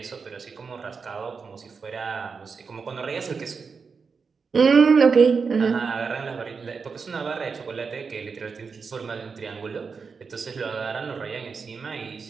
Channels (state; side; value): quieter; left; 5.3 dB